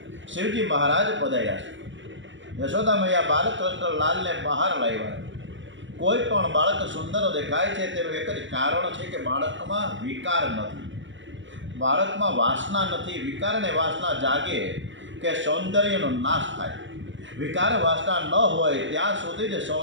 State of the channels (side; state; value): left; late; 0.55 ms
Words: શિવજી મહારાજ પધાર્યા છે। યશોદા મૈયા બાલકૃષ્ણ લાલને બહાર લાવ્યા। કોઈ પણ બાળક સુંદર દેખાય છે તેનું એક જ કારણ છે કે બાળકમાં વિકાર નથી, બાળકમાં વાસના નથી। વિકાર અને વાસના જાગે કે સૌંદર્યનો નાશ થાય। વિકાર વાસના ન હોય ત્યાં સુધી જ